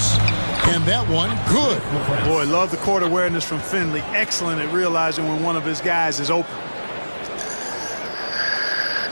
And that one, good. Boy, love the court awareness from Finley. Excellent at realizing when one of his guys is open.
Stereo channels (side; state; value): both; inverted; correlation -1.00